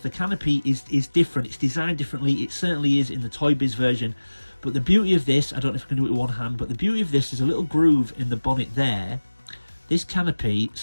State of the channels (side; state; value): both; inverted; correlation -1.00